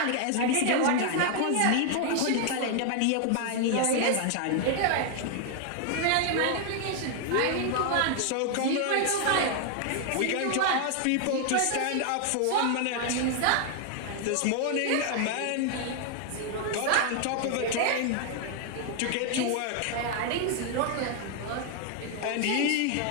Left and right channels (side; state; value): both; different; correlation 0.00